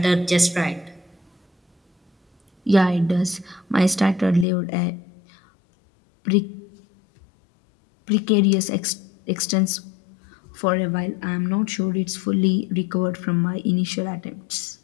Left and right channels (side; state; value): right; drops out; at 4.5 s